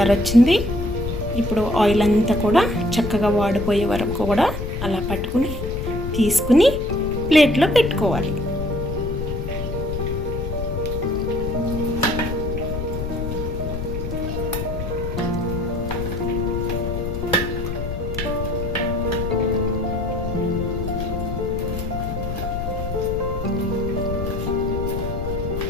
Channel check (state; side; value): noise; left; rumble, 5 dB below the sound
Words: వచ్చింది. ఇప్పుడు ఆయిల్ అంతా కూడా చక్కగా వాడిపోయే వరకు కూడా అలా పట్టుకుని తీసుకుని ప్లేట్లో పెట్టుకోవాలి.